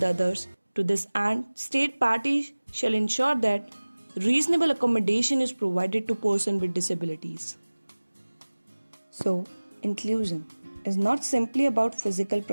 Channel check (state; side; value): inverted; both; correlation -1.00